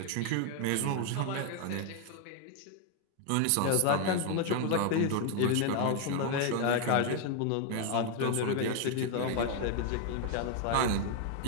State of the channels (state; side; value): different; both; correlation 0.01